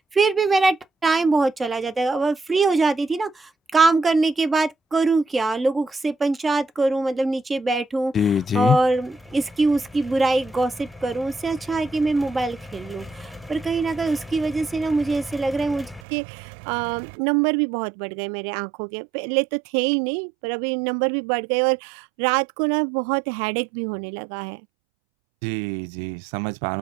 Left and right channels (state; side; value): drops out; left; at 16.0 s